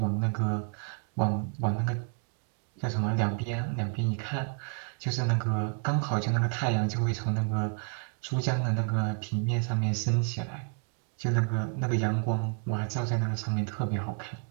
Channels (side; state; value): left; quieter; 38.3 dB